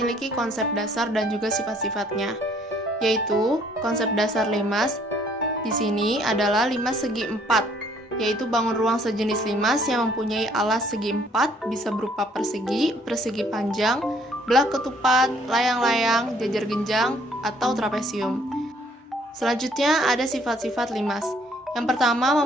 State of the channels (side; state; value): both; normal; correlation 0.62